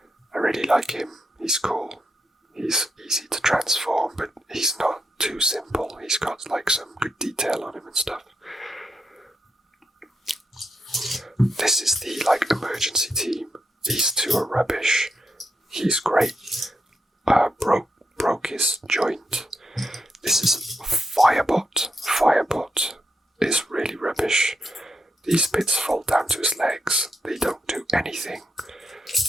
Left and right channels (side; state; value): both; normal; correlation 0.82